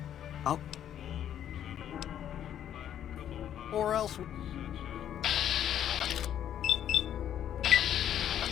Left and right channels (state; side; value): quieter; right; 10.3 dB